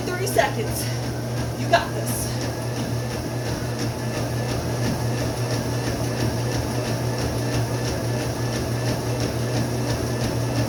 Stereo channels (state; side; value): identical; both; correlation 1.00